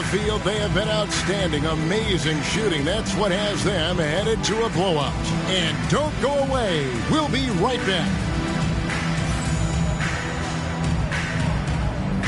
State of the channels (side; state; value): both; identical; correlation 1.00